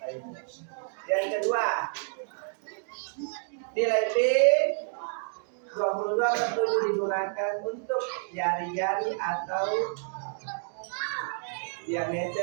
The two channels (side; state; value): left; silent; digital silence